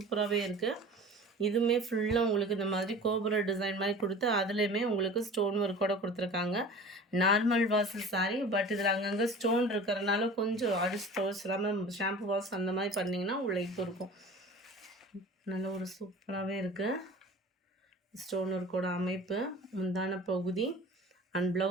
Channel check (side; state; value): both; normal; correlation 0.40